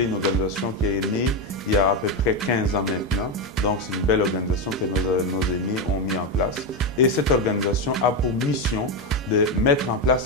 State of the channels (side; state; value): both; normal; correlation 0.10